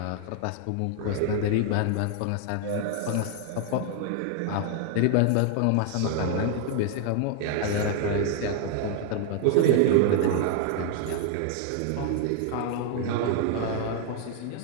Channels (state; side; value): different; both; correlation 0.00